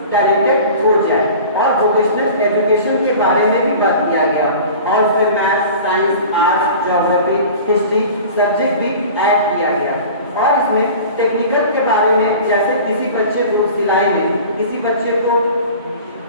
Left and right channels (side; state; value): both; inverted; correlation -0.39